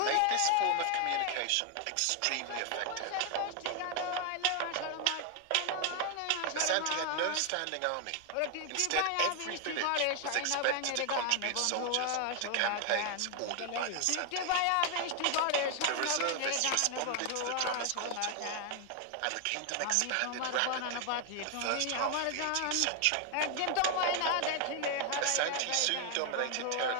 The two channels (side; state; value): both; different; correlation 0.01